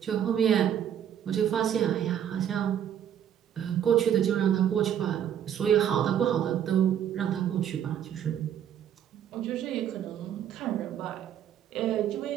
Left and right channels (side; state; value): left; quieter; 9.7 dB